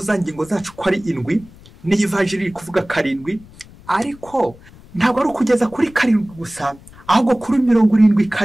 za ngingo zacu ko ari 7, ni ivanjiri kuvuga 7, ariko ntabwo ari kugeza kuri 7 gusa, ahubwo kuri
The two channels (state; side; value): noise; left; rumble, 23 dB below the sound